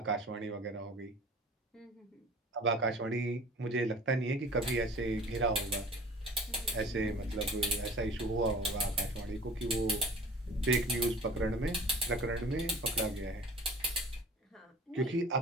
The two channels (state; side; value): normal; both; correlation 0.44